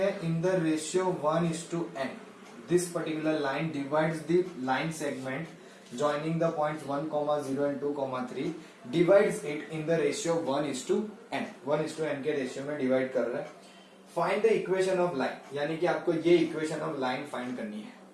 in the ratio 1:n। This particular line divides the line segment joining the points 1, 0 and 2, 3 divides it in the ratio 1:n. 1:n के रेशियो में डिवाइड कर रहा है. Find the equation of line, यानी कि आपको ये इक्वेशन ऑफ लाइन फाइंड करनी है.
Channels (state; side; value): identical; both; correlation 1.00